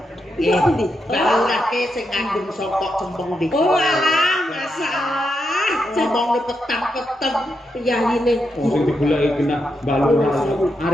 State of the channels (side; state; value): both; normal; correlation 0.83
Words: Iya pundi? Balurake sing ngandung sokok cempeng niki. Oh alah, masalah. Ngomong petang-petang Piyayine. Oh, sing digoleki kena Mbak Lurah.